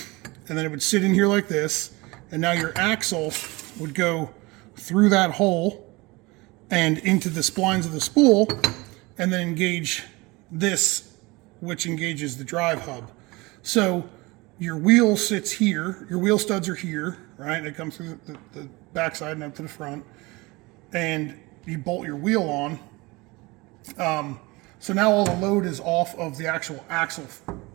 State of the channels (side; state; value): left; quieter; 23.6 dB